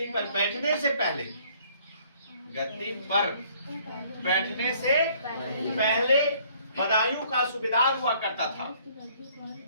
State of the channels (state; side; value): inverted; both; correlation -0.60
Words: पर बैठने से पहले, गद्दी पर बैठने से पहले बदायूं का सूबेदार हुआ करता था।